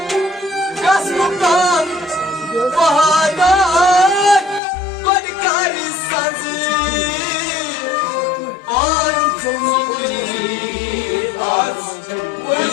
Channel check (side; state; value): right; drops out; at 4.6 s